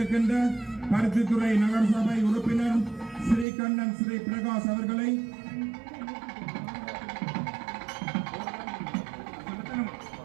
பருத்தித்துறை நகரசபை உறுப்பினர் ஸ்ரீ கண்ணன் ஸ்ரீ பிரகாஷ் அவர்களை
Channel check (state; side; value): drops out; left; at 3.5 s